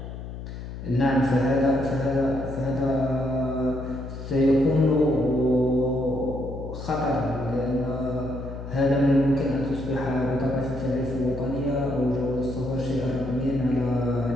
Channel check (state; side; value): noise; left; hum, 9 dB below the sound